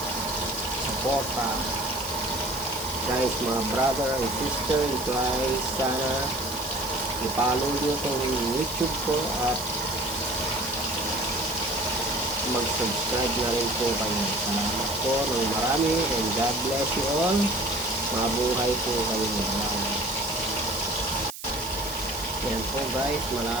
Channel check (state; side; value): noise; right; hiss, 12 dB below the sound